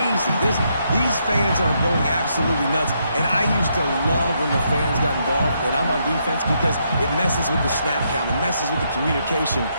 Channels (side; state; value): both; inverted; correlation -0.77